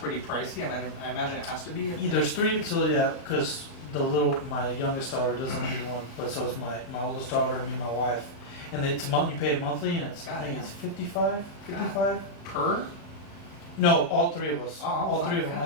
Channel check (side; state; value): right; late; 36 ms